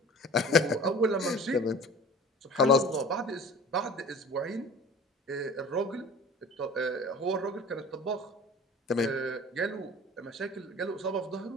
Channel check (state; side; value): normal; both; correlation 0.42